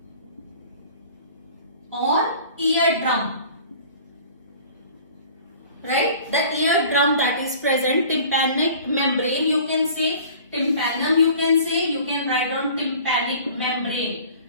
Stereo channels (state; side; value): inverted; both; correlation -0.46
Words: or eardrum. Right? The eardrum that is present, tympanic membrane, you can say tympanum, you can say, you can write on tympanic membrane.